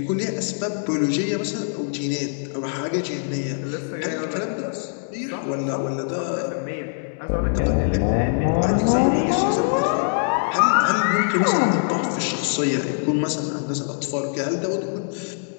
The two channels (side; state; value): right; silent; digital silence